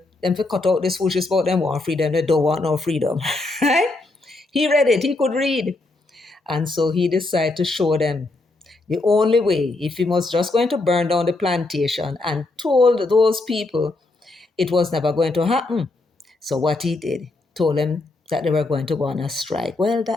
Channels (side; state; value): right; quieter; 3.1 dB